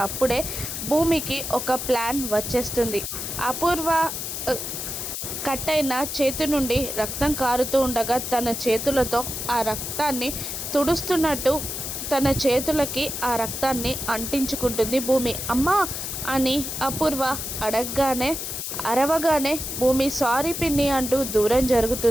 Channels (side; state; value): left; noise; hiss, 5 dB below the sound